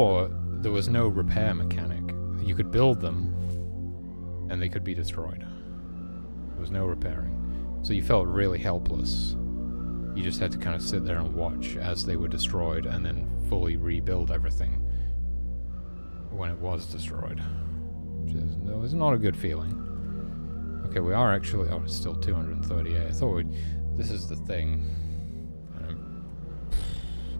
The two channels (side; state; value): both; inverted; correlation -1.00